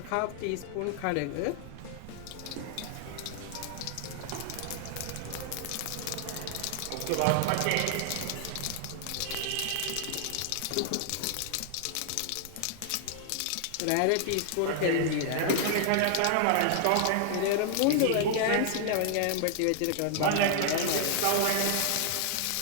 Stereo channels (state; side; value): different; both; correlation 0.00